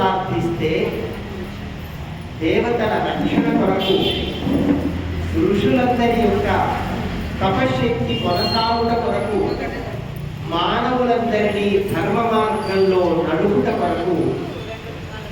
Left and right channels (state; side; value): identical; both; correlation 1.00